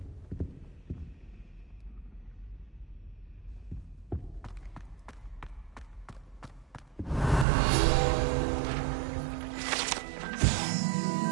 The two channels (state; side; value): drops out; left; at 7.5 s